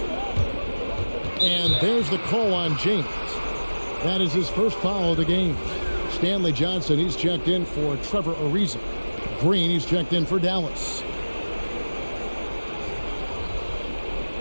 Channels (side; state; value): both; inverted; correlation -1.00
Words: And there's the call on James. That is his first foul of the game. Stanley Johnson, he's checked in for Trevor Ariza. Green, he's checked in for Dallas.